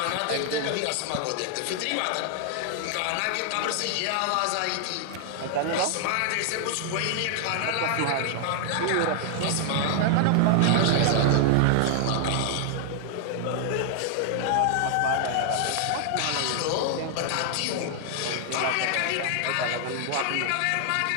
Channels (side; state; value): both; different; correlation 0.00